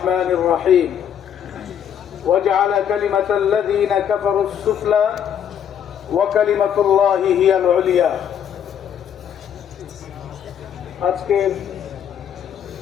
রহিম। وجعل كلمة الذين كفروا السفلى وكلمة الله هي العليا। আজকের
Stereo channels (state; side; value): quieter; right; 8.9 dB